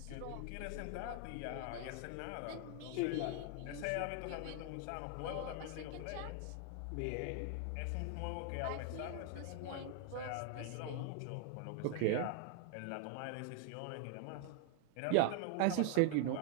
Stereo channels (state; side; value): different; both; correlation 0.00